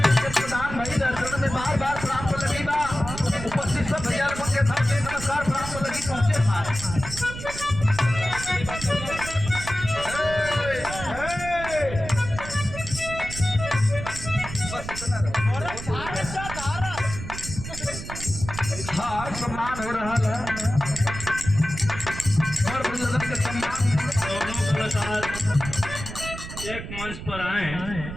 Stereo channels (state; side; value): noise; right; rumble, 9 dB below the sound